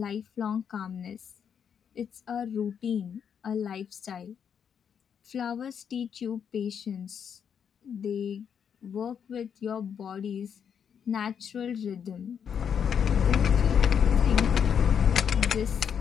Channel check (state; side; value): quieter; right; 7.7 dB